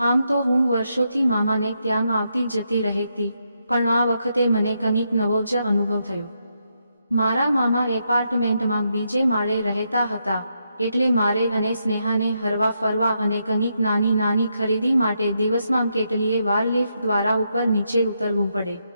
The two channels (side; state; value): both; inverted; correlation -0.81